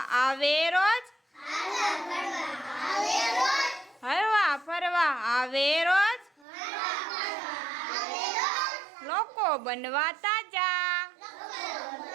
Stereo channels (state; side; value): drops out; left; at 6.5 s